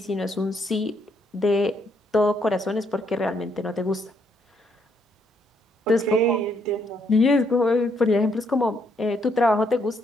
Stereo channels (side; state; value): both; normal; correlation 0.73